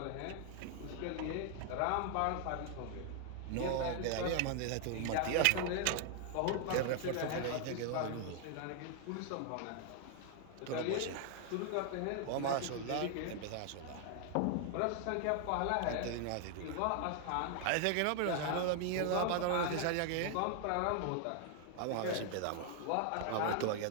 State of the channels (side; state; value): both; different; correlation 0.00